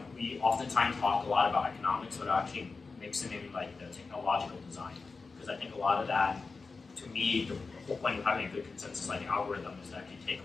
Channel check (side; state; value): right; quieter; 4.3 dB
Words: we oftentimes talk a lot about economics, but actually mixing in like the technological design. Because I think a lot of that, to me, the whole point of having a good consensus like algorithm is that you take